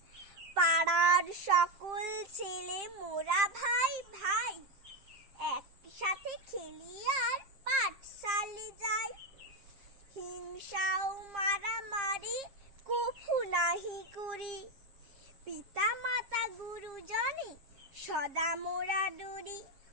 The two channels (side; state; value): left; late; 7.6 ms